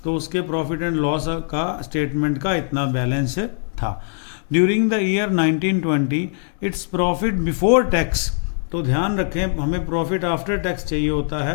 तो उसके प्रॉफिट एंड लॉस का स्टेटमेंट का इतना बैलेंस था। During the year 1920 its profit before tax, तो ध्यान रखें हमें प्रॉफिट आफ्टर टैक्स चाहिए होता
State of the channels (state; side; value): silent; right; digital silence